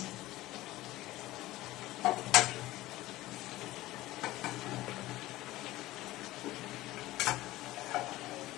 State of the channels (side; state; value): right; quieter; 17.2 dB